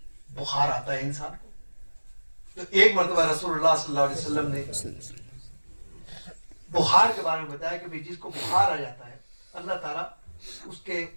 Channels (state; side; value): inverted; both; correlation -1.00